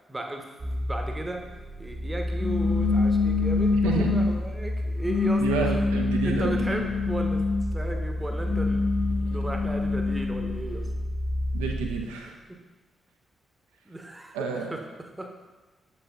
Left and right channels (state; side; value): normal; both; correlation 0.78